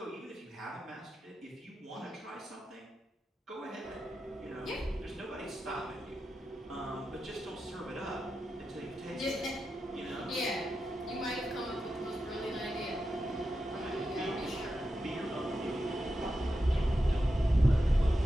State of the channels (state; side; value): normal; both; correlation 0.89